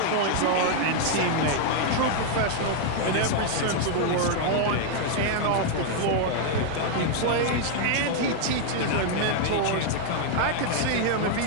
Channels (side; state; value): both; different; correlation 0.00